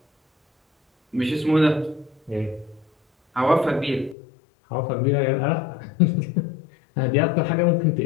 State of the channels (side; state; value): right; drops out; at 4.2 s